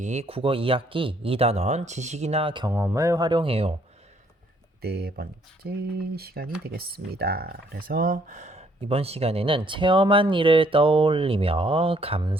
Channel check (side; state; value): both; normal; correlation 0.66